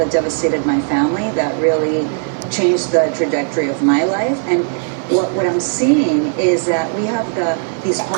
devastated my family, that really changed the trajectory of my life. And what I'm seeing is that we have these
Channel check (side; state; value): left; silent; digital silence